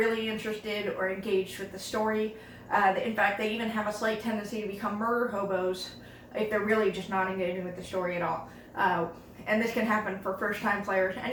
interested or engaged with the story. In fact, they even have a slight tendency to become murder hobos if they're really just not engaging with the story at all. And this can happen for first-time players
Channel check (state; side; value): identical; both; correlation 1.00